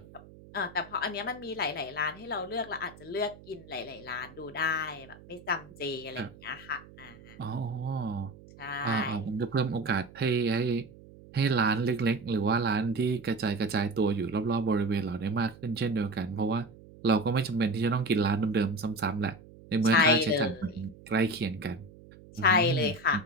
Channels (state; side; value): noise; right; hum, 21 dB below the sound